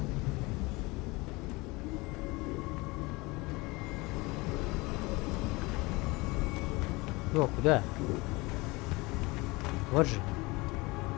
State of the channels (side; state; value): right; quieter; 23.8 dB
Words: О, куда? Вот же.